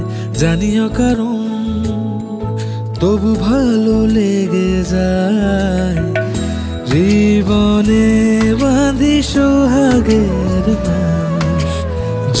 জানিও কারণ তবু ভালো লেগে যায়। জীবনে বাঁধি সোহাগের মাস,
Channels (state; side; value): identical; both; correlation 1.00